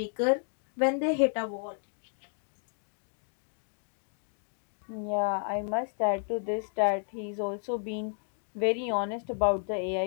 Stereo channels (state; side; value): silent; right; 56 dB below the other